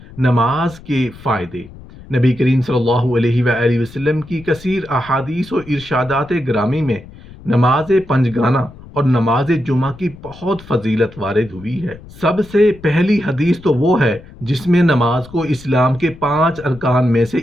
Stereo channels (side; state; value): left; noise; rumble, 19 dB below the sound